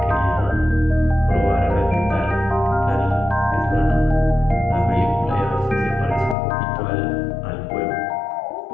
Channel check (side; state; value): right; drops out; at 6.4 s